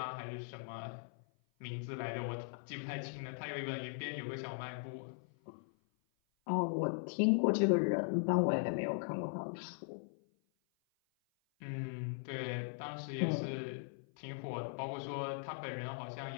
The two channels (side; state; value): right; silent; 52 dB below the other